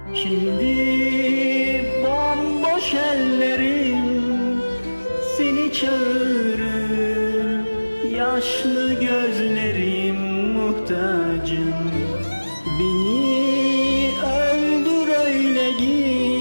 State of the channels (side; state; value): both; inverted; correlation -1.00